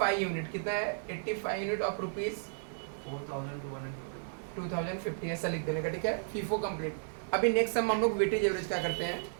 यूनिट, कितना है 85 यूनिट ऑफ रुपीज 2050, ऐसा लिख देने का, ठीक है, FIFO कंप्लीट। अभी नेक्स्ट सम हम लोग वेटेज एवरेज क्या करते हैं,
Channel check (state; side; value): silent; left; digital silence